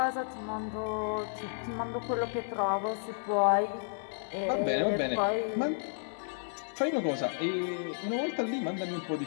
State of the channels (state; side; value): silent; right; digital silence